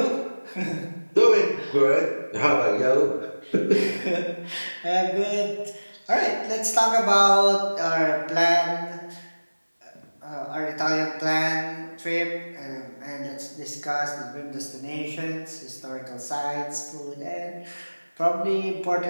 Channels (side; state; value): both; inverted; correlation -1.00